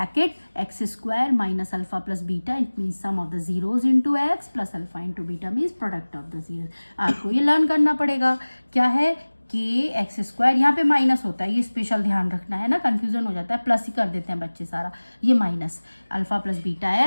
X square minus alpha plus beta, it means sum of the zeros into X plus alpha into beta means product of the zeros. आपको ये learn करना पड़ेगा, क्या है के x square, यहाँ पे minus होता है, ये स्पेशल ध्यान रखना है ना, कंफ्यूजन हो जाता है, प्लस ही कर देते हैं बच्चे सारा, ये minus alpha plus beta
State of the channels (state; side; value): inverted; both; correlation -1.00